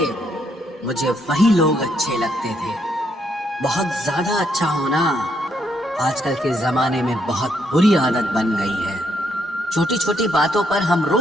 मुझे वही लोग अच्छे लगते थे। बहुत ज्यादा अच्छा होना आजकल के जमाने में बहुत बुरी आदत बन गई है। छोटी छोटी बातों पर हम रो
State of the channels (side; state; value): both; normal; correlation 0.74